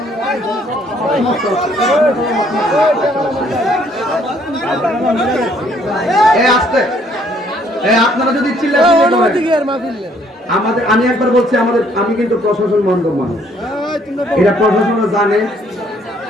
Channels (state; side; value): normal; both; correlation 0.64